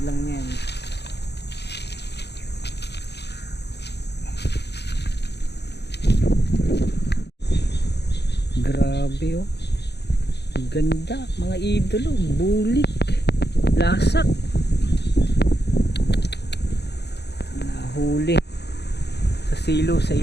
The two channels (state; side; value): late; right; 0.49 ms